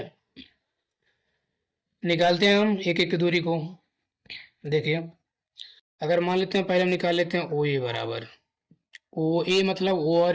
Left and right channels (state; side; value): identical; both; correlation 1.00